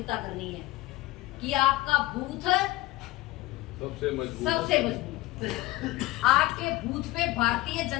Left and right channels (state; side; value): quieter; right; 18.2 dB